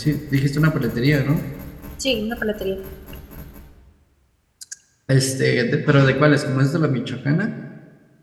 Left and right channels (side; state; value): both; identical; correlation 1.00